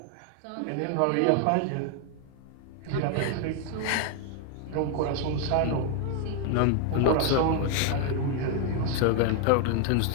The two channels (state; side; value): different; both; correlation 0.00